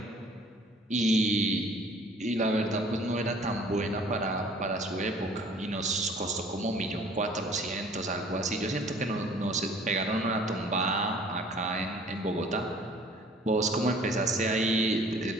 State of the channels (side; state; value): both; normal; correlation 0.52